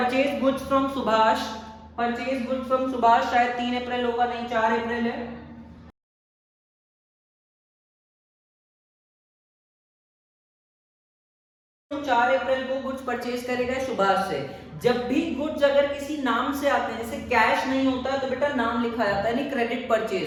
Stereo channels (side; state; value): both; identical; correlation 1.00